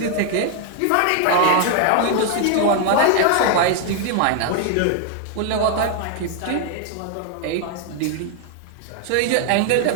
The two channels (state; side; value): different; both; correlation 0.00